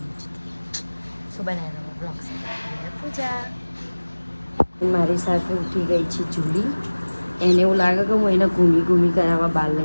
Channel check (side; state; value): both; inverted; correlation -1.00